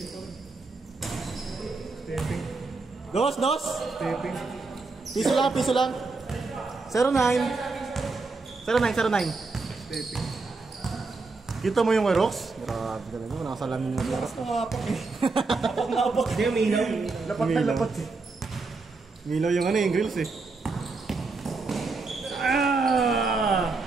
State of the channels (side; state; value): left; quieter; 3.9 dB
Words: Stepping. Dos! Stepping. Piso lang. 09. 09. Stepping. Kita mo yung Rox? Grabe talaga, nakasalamin yung Rox. Nakapak eh. Napak. Hindi, may ilaw. Lapat na lapat eh. Milaw yung yung grills eh. Ah!